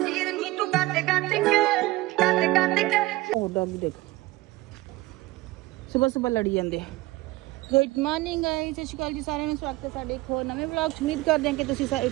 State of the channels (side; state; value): left; quieter; 19.6 dB